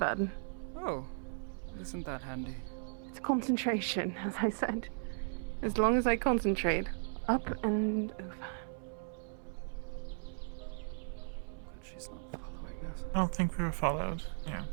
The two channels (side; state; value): left; silent; 53 dB below the other